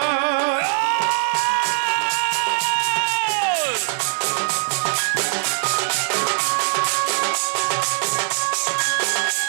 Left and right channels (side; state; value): left; silent; digital silence